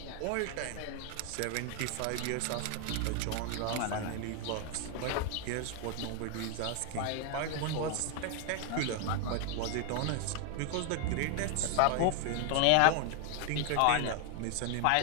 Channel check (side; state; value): both; different; correlation 0.00